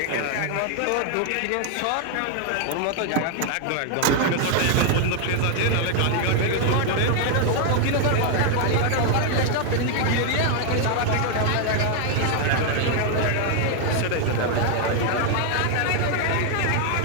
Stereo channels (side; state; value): both; different; correlation 0.00